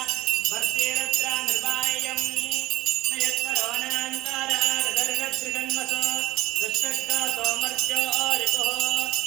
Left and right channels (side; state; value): left; quieter; 17.7 dB